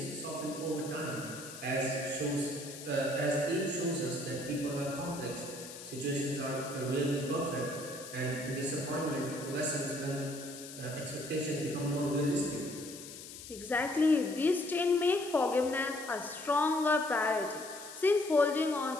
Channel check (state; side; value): noise; left; hiss, 13 dB below the sound